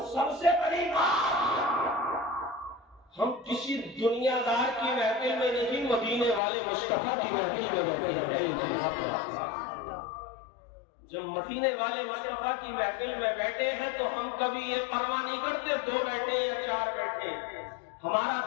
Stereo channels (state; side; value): drops out; right; at 6.4 s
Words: سب سے بڑی بات ہم کسی دنیا دار کی محفل میں نہیں، مدینے والے مصطفیٰ کی محفل میں جب مدینے والے مصطفیٰ کی محفل میں بیٹھے ہیں تو ہم کبھی یہ پرواہ نہیں کرتے 2 بیٹھے یا 4 بیٹھے، ہمارا